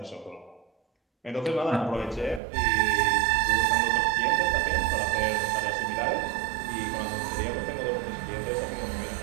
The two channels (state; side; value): drops out; left; at 2.4 s